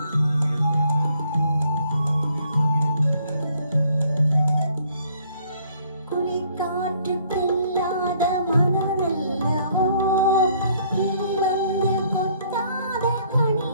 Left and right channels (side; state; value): both; inverted; correlation -0.64